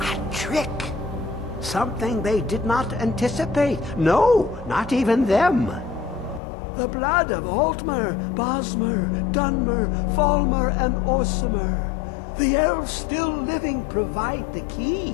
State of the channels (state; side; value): drops out; right; at 6.4 s